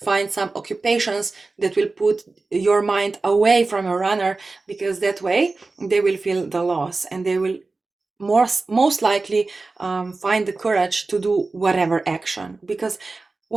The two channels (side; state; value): left; quieter; 3.6 dB